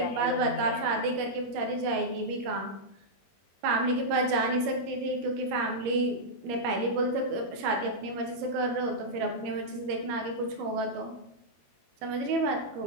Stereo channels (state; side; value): late; left; 21 ms